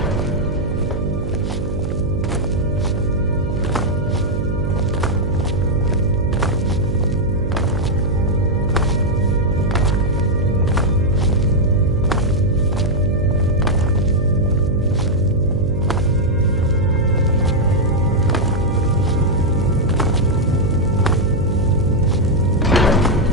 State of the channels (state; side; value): noise; right; hum, 4 dB below the sound